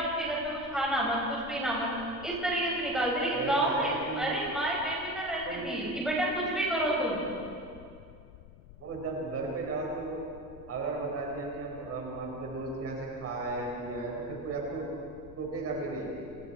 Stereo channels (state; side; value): noise; left; rumble, 18 dB below the sound